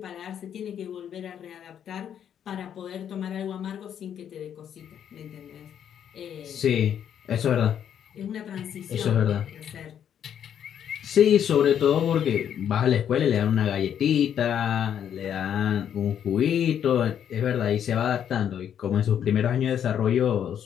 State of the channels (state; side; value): quieter; right; 9.2 dB